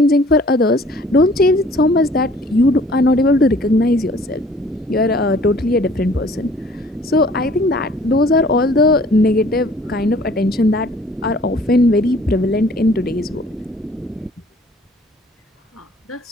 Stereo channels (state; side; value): normal; both; correlation 0.54